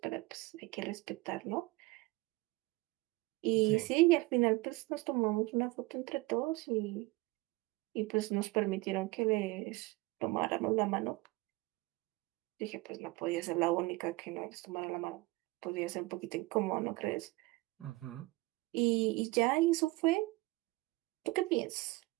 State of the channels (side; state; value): left; quieter; 21.9 dB